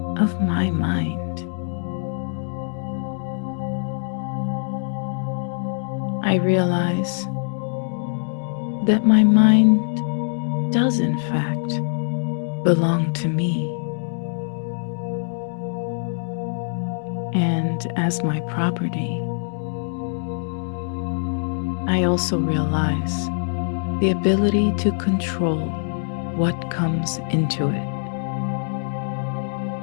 of my mind. I realize that my mind does, in fact, belong to me. And as my property, I also realize the ability to control what comes into it.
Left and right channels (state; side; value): silent; right; digital silence